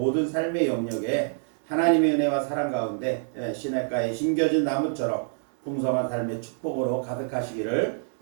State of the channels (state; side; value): silent; left; digital silence